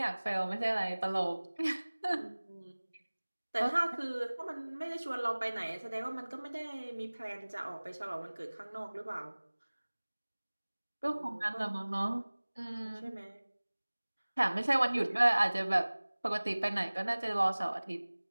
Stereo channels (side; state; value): both; inverted; correlation -1.00